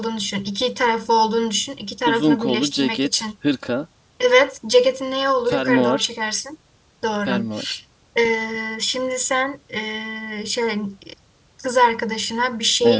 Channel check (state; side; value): identical; both; correlation 1.00